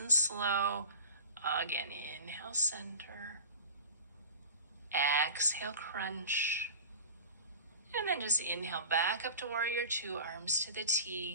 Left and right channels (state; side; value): inverted; both; correlation -0.37